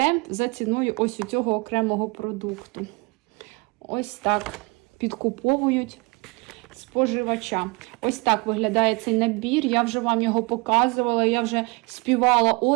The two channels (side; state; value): left; quieter; 27.7 dB